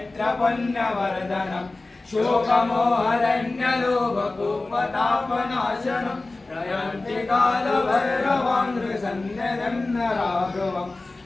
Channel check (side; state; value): right; quieter; 3.2 dB